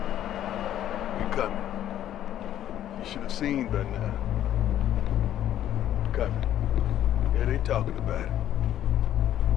We coming. You should have seen by now. Coming. Yeah, they talking about it.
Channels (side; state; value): right; quieter; 11.6 dB